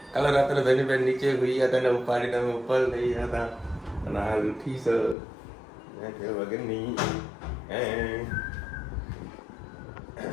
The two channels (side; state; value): right; drops out; at 5.2 s